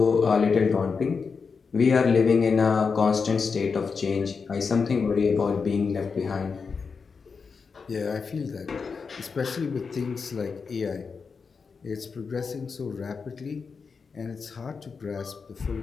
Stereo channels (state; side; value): quieter; right; 5.3 dB